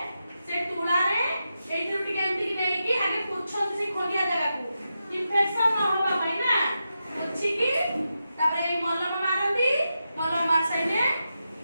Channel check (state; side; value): inverted; both; correlation -0.88